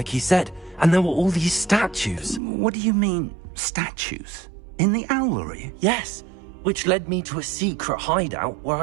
he said, and there were all these statues. What do you mean, statues? In the owlery? Yes, which led me to a secret hideout where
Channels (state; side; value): drops out; left; at 2.4 s